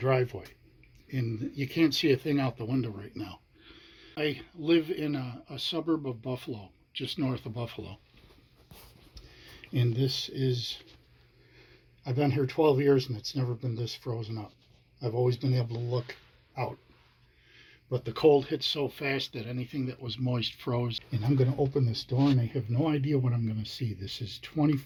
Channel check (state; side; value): identical; both; correlation 1.00